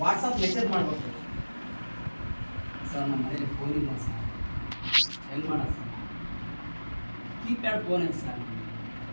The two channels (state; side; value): inverted; both; correlation -1.00